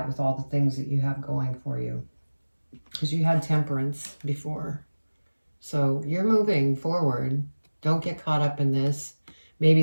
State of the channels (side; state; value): both; inverted; correlation -1.00